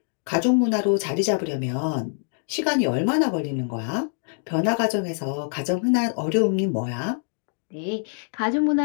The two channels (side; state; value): right; silent; 58 dB below the other